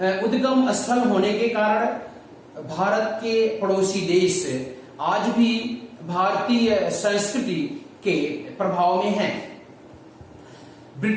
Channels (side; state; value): both; identical; correlation 1.00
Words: उद्गम स्थल होने के कारण भारत के पड़ोसी देश आज भी भारतीय संस्कृति के प्रभाव में हैं।